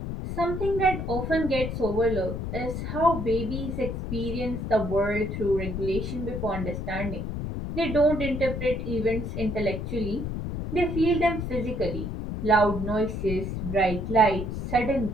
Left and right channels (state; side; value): noise; left; rumble, 4 dB below the sound